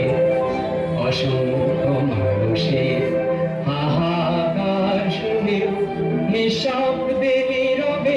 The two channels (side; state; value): both; identical; correlation 1.00